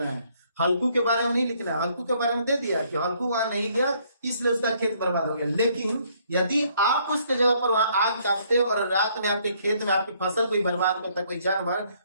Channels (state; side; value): inverted; both; correlation -0.66